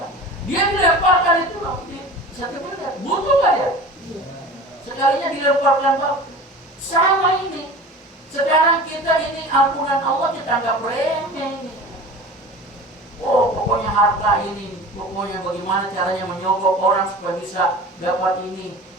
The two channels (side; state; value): both; normal; correlation 0.37